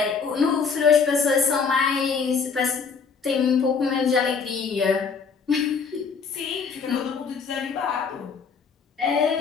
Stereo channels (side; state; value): right; quieter; 5.5 dB